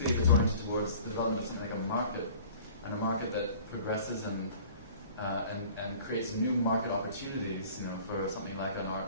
if it's oriented towards the development of something like a market, and a market that progresses and creates new market opportunities, for something like an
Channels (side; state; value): both; inverted; correlation -0.47